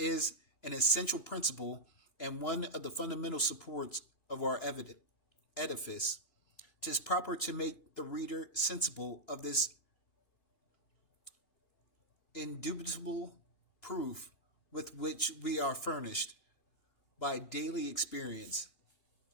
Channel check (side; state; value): right; late; 3.0 ms